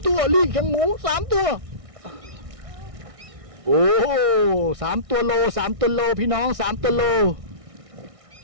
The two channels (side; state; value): left; late; 1.6 ms